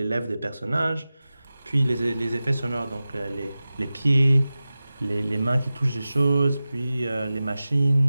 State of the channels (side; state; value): both; inverted; correlation -0.95